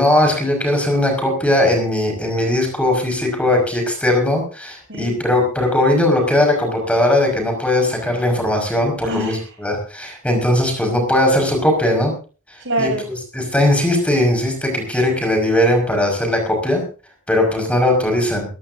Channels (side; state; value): both; normal; correlation 0.50